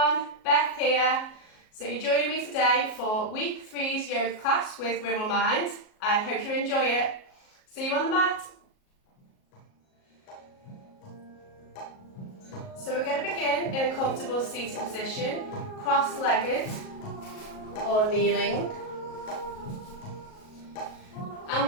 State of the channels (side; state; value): right; late; 37 ms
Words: Beth here. So you're joining me today for week 3's yoga class with Wiggle Mind. I hope you enjoy it. See you on the mat. So we're going to begin in a comfortable seated position, cross-legged or kneeling. And